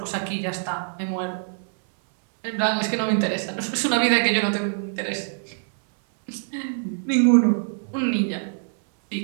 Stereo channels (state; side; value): silent; left; 61 dB below the other